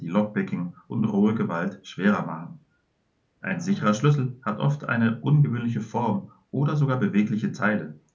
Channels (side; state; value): both; identical; correlation 1.00